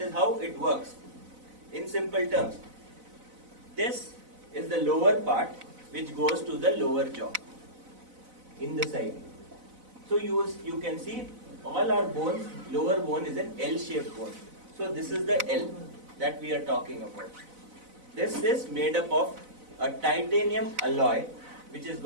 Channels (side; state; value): left; late; 4.0 ms